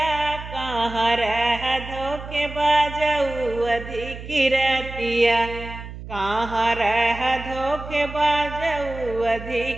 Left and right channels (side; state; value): right; noise; hum, 12 dB below the sound